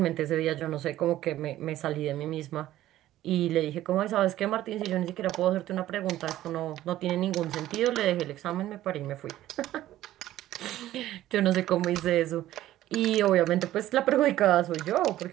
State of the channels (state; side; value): quieter; left; 14.1 dB